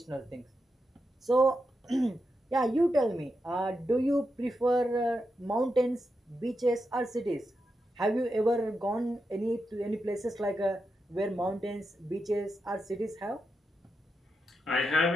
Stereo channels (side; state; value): both; normal; correlation 0.87